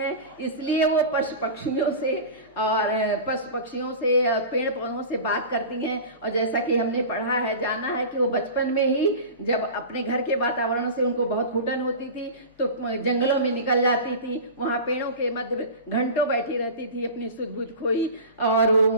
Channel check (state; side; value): inverted; both; correlation -0.31